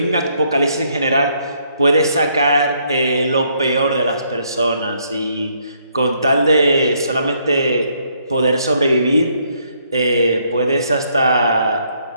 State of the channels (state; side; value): inverted; both; correlation -0.70